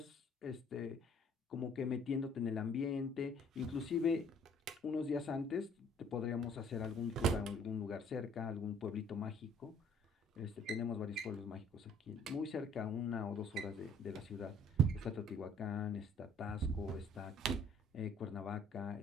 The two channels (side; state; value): both; normal; correlation 0.57